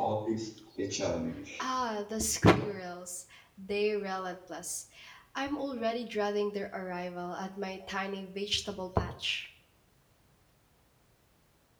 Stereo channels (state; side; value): identical; both; correlation 1.00